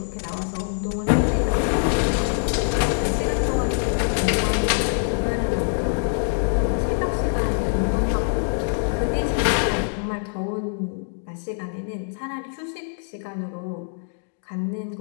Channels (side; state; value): right; silent; digital silence